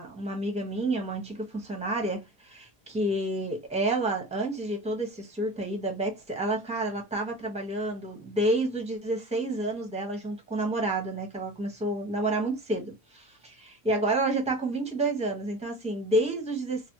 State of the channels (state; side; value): normal; both; correlation 0.36